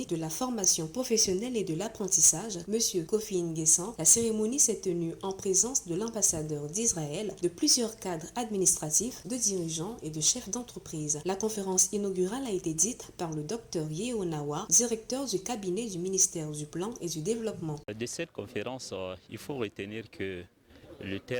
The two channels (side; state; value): both; identical; correlation 1.00